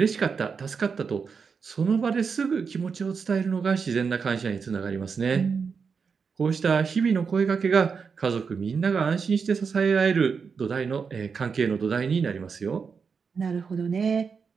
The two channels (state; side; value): quieter; left; 5.7 dB